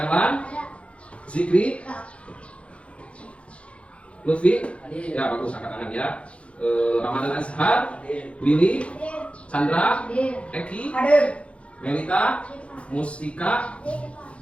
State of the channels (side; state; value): right; late; 0.061 ms